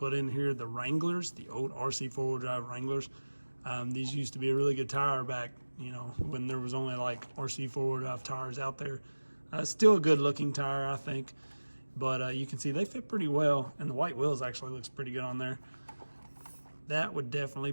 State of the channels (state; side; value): inverted; both; correlation -1.00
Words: in here, the Wranglers, the old RC4 drive Wranglers. These used to be a really good tire back, you know, when there was only like RC4 drive tires out there. Still a good looking tire, I think. But you can see they fit pretty well, and the white wheels actually looks pretty good on there. That would definitely